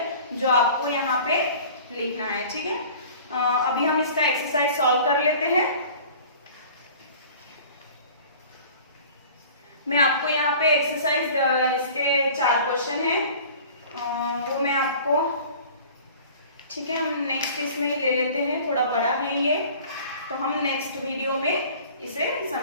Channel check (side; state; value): both; inverted; correlation -0.45